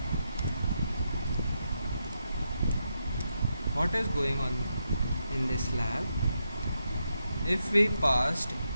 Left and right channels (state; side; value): inverted; both; correlation -0.83